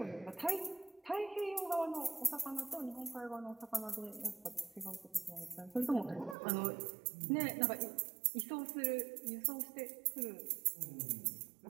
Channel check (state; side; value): drops out; left; at 6.4 s